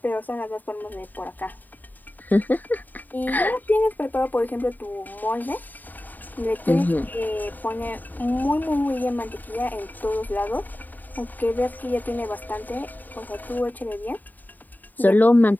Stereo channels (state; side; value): late; right; 0.087 ms